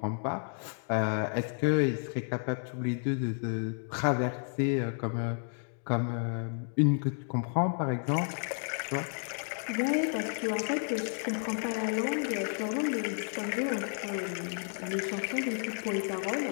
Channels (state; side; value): silent; right; 57 dB below the other